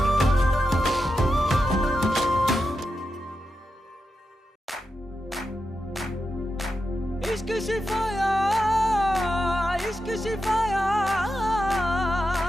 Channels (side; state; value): both; normal; correlation 0.88